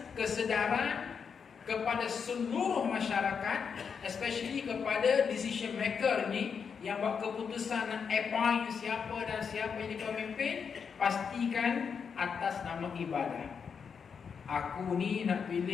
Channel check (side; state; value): right; quieter; 6.4 dB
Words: kesedaran kepada seluruh masyarakat, especially kepada decision maker ni yang buat keputusan nak appoint siapa dan siapa yang pemimpin, pastikan atas nama ibadah. Aku ni nak